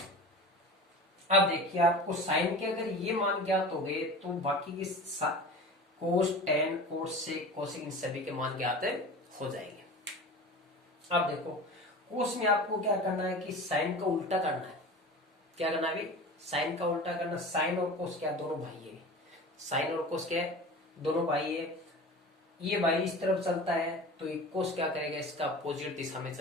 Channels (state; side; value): normal; both; correlation 0.34